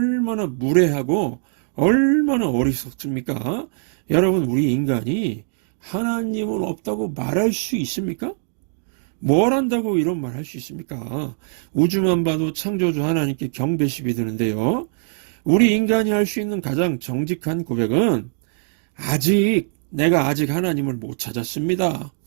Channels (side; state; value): left; silent; 57 dB below the other